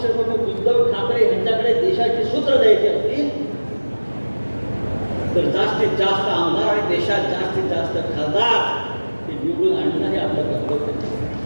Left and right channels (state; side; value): inverted; both; correlation -1.00